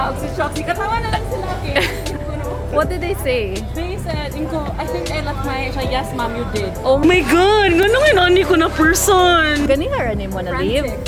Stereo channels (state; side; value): identical; both; correlation 1.00